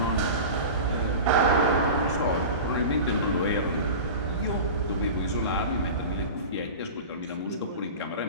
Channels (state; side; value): inverted; both; correlation -0.32